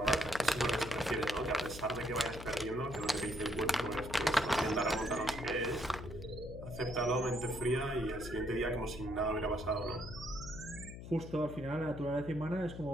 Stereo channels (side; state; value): left; noise; hum, 11 dB below the sound